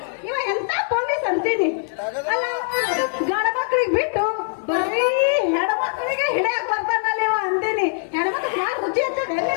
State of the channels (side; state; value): right; silent; digital silence